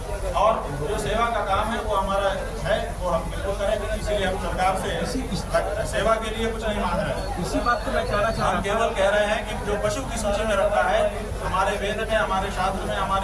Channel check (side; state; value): both; identical; correlation 1.00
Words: और जो सेवा का काम है वो हमारा है, वो हम बिल्कुल करेंगे। इसीलिए हम सरकार से सेवा के लिए कुछ नहीं मांग रहे हैं। इसी बात को मैं कहना चाह रहा हूं। हम केवल कह रहे हैं कि जो पशु की सूची में रखा है हमारे वेद में, हमारे शास्त्र में,